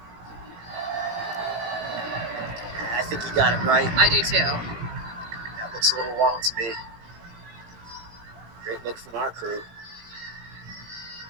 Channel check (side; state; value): left; late; 18 ms